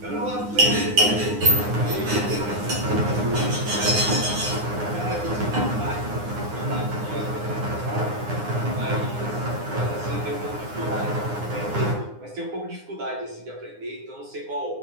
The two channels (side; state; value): left; late; 9.7 ms